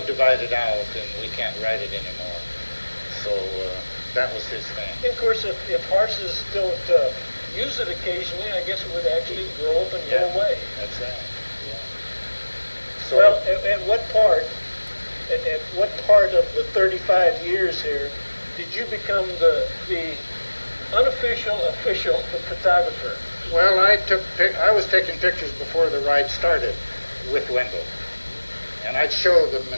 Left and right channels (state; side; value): inverted; both; correlation -1.00